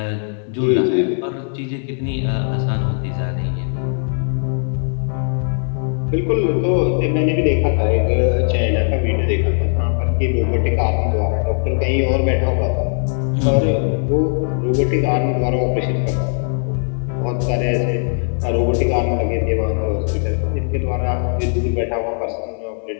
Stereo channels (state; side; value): silent; right; 67 dB below the other